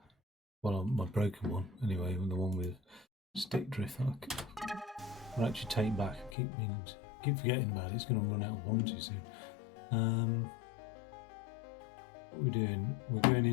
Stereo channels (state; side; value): drops out; right; at 6.4 s